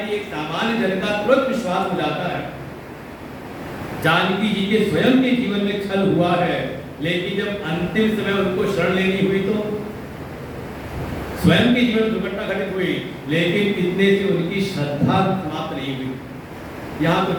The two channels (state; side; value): identical; both; correlation 1.00